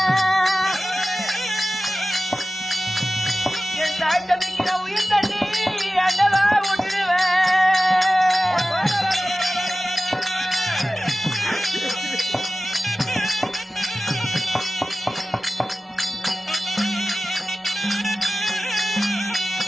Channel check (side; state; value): both; normal; correlation 0.96